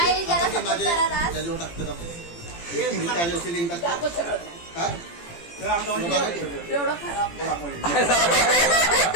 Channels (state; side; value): late; right; 17 ms